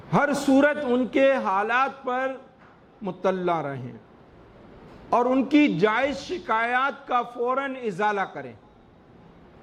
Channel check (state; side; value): identical; both; correlation 1.00